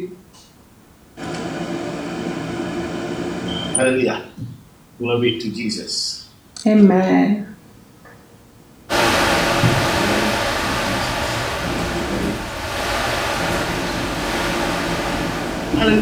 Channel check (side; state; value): both; identical; correlation 1.00